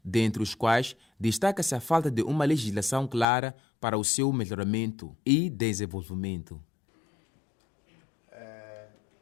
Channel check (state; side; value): drops out; right; at 3.2 s